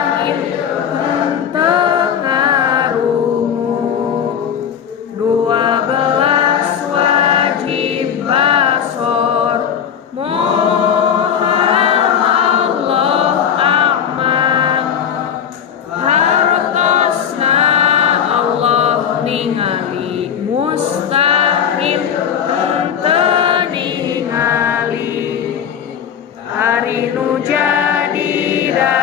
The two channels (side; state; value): right; quieter; 8.3 dB